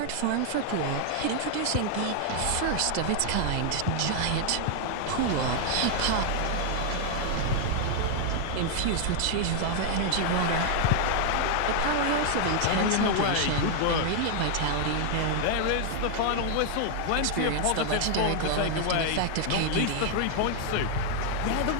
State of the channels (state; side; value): different; both; correlation 0.00